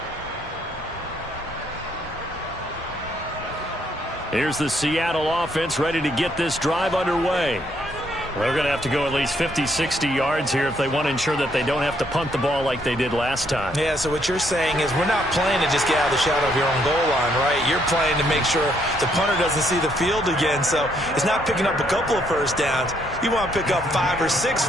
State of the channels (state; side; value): normal; both; correlation 0.71